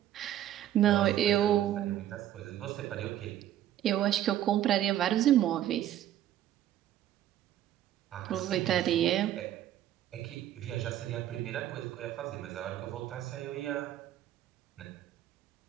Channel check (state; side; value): quieter; left; 12.1 dB